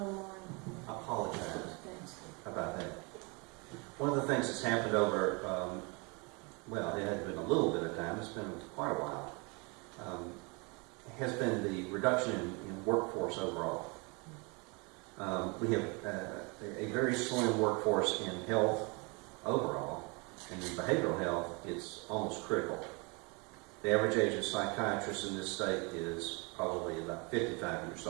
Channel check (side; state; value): left; quieter; 30.2 dB